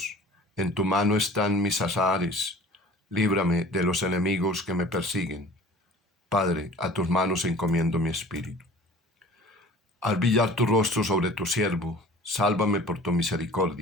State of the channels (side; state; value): both; normal; correlation 0.45